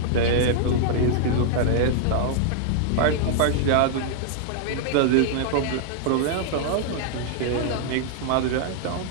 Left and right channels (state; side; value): different; both; correlation -0.01